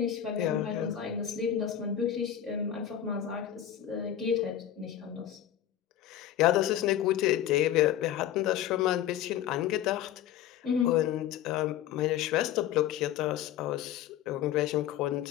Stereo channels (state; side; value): quieter; right; 11.0 dB